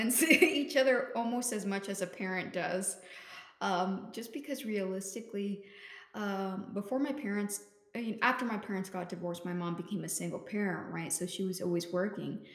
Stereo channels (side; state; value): both; identical; correlation 1.00